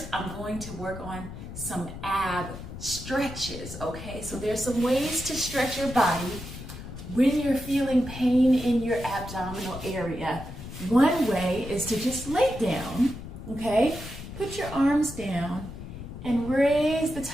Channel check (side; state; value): left; noise; rumble, 11 dB below the sound